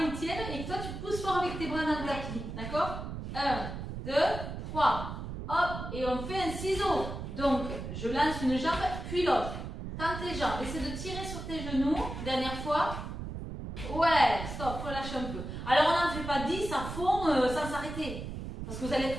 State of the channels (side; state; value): right; noise; rumble, 7 dB below the sound